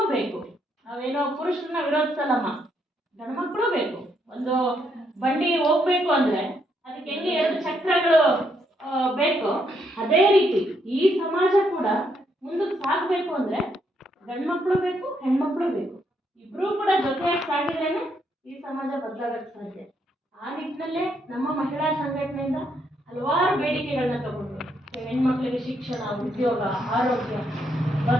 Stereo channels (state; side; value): normal; both; correlation 0.75